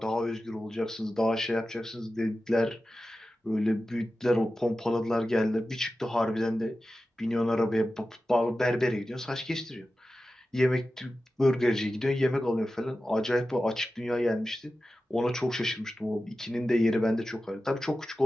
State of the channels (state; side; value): normal; both; correlation 0.93